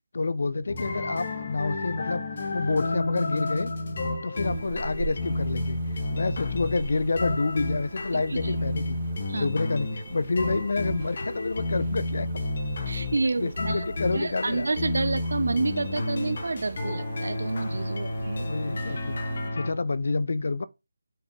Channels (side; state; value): both; inverted; correlation -0.91